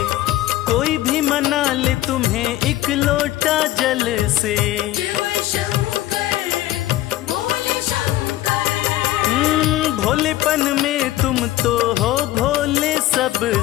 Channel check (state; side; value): quieter; right; 15.1 dB